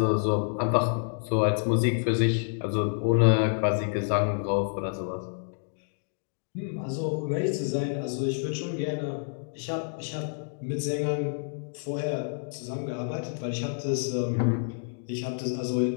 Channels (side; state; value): right; silent; digital silence